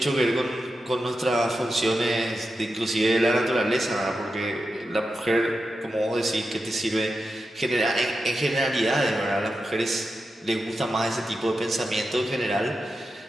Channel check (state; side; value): normal; both; correlation 0.89